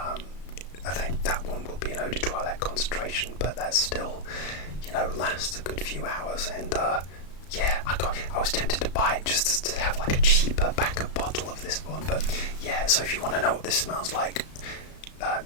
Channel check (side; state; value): right; late; 34 ms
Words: think that one will be an eau de toilette concentration, but that still, lasts a good few hours. And I was tempted to buy it just to have like a cheaper backup bottle of this one. But yeah, so if you want to know what this smells like,